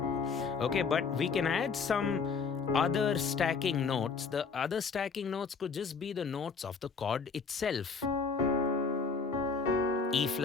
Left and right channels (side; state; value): right; quieter; 5.2 dB